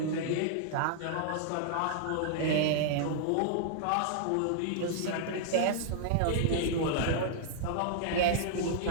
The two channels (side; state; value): both; different; correlation -0.01